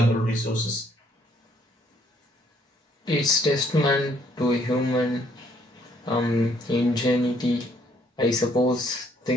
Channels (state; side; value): normal; both; correlation 0.66